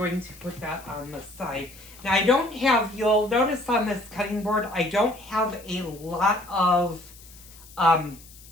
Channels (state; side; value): noise; left; hiss, 21 dB below the sound